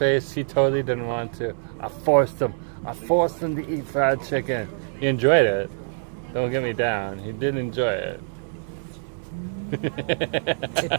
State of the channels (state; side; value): silent; left; digital silence